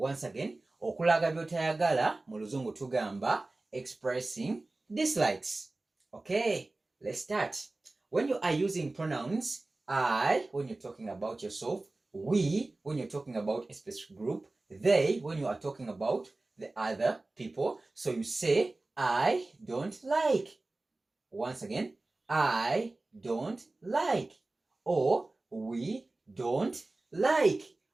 again, okulaga by'otayagala mu Luzungu tugamba expressing dislikes. Okay, let's start. When you are using pronouns I when you're talking about yourself, we when you're talking about a specific group, they when you are talking about the other people. So you say, I don't like. Once again, I don't like. Or we don't like.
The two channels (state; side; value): quieter; left; 3.0 dB